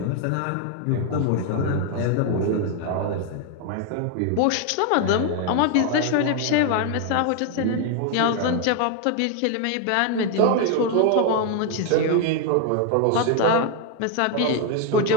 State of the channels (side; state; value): both; different; correlation 0.01